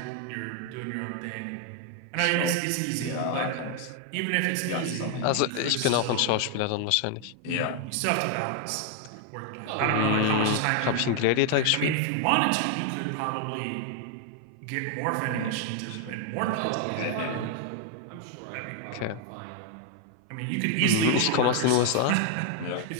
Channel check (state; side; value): different; both; correlation 0.00